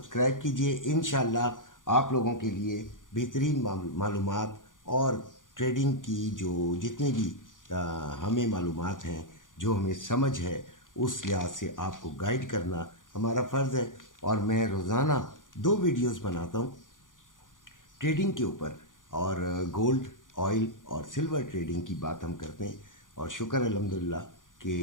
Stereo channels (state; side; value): late; right; 0.88 ms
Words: कीजिए। इंशाल्लाह आप लोगों के लिए बेहतरीन मालूमात और ट्रेडिंग की जो जितनी भी हमें मालूमात हैं, जो हमें समझ है, उस लिहाज से आपको गाइड करना हमारा फ़र्ज़ है। और मैं रोज़ाना 2 वीडियोस बनाता हूँ ट्रेडिंग के ऊपर, और गोल्ड, ऑयल और सिल्वर ट्रेडिंग की बात हम करते हैं। और शुक्र अल्हम्दुलिल्लाह